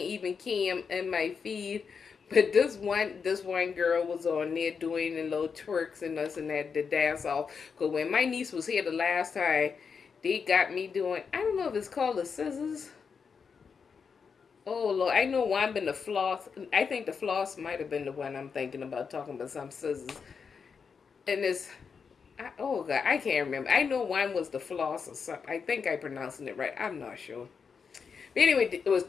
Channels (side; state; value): right; quieter; 5.9 dB